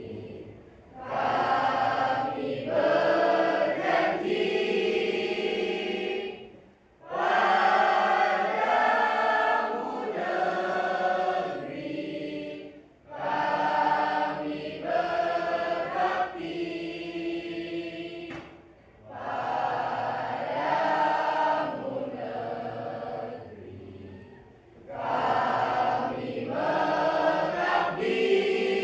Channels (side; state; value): both; identical; correlation 1.00